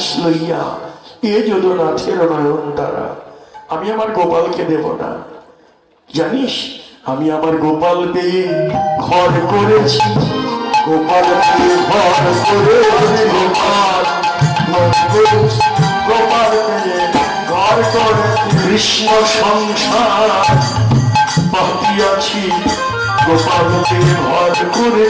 লইয়া এ যদুনাথের নয়ন তারা। আমি আমার গোপালকে দেব না, জানিস? আমি আমার গোপাল পেয়ে ঘর করেছি, গোপাল পেয়ে ঘর করেছি, গোপাল গোপাল পেয়ে ঘর কৃষ্ণ সংসার পাতিয়াছি, গোপালকে ঘর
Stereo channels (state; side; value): identical; both; correlation 1.00